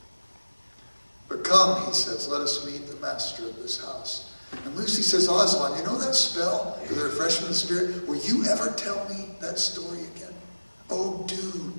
But come, he says, let us meet the master of this house. And Lucy says, Aslan, you know that spell for the refreshment of the spirit? Will you ever tell me that story again? Oh, do,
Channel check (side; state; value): both; inverted; correlation -1.00